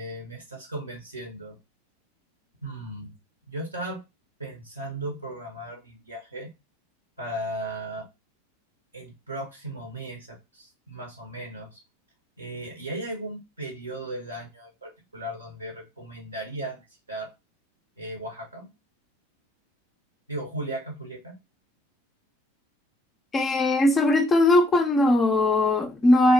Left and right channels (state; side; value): normal; both; correlation 0.65